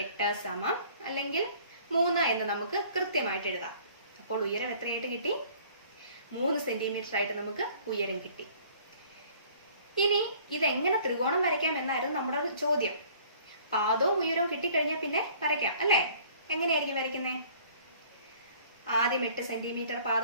8 സമം അല്ലെങ്കിൽ 3 എന്ന് നമുക്ക് കൃത്യമായിട്ട് എഴുതാം. അപ്പോൾ ഉയരം എത്രയായിട്ട് കിട്ടി? 3 സെന്റിമീറ്റർ ആയിട്ട് നമുക്ക് ഉയരം കിട്ടി. ഇനി ഇതെങ്ങനെ ത്രികോണം വരയ്ക്കാം എന്നായിരുന്നു നമ്മുടെ ചോദ്യം. പാദവും ഉയരവും കിട്ടിക്കഴിഞ്ഞാൽ പിന്നെ വരയ്ക്കാം അല്ലേ? എങ്ങനെയായിരിക്കും വരയ്ക്കുന്നേ? ആദ്യം 8 സെന്റിമീറ്റർ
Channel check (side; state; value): both; inverted; correlation -0.54